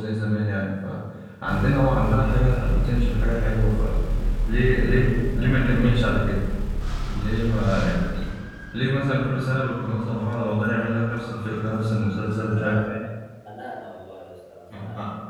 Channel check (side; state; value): both; identical; correlation 1.00